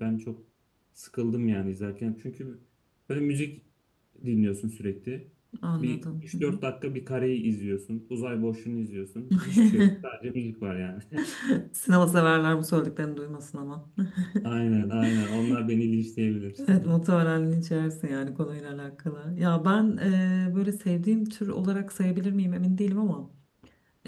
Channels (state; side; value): identical; both; correlation 1.00